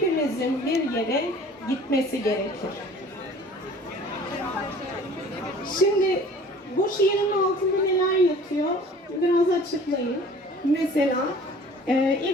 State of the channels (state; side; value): normal; both; correlation 0.48